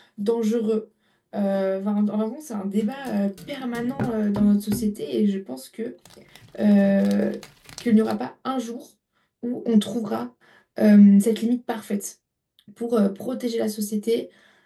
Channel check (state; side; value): identical; both; correlation 1.00